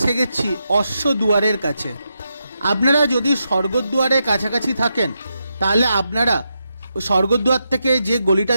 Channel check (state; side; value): inverted; both; correlation -0.85